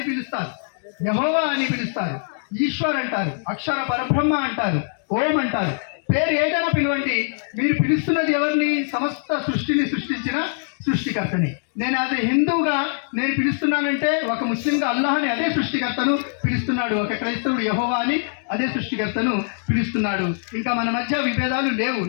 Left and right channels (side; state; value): right; silent; 64 dB below the other